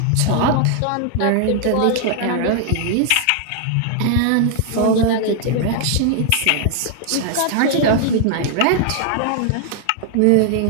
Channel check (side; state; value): both; different; correlation 0.00